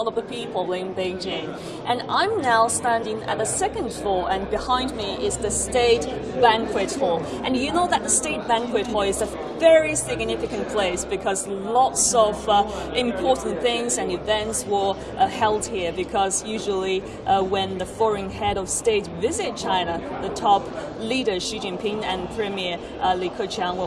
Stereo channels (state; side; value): identical; both; correlation 1.00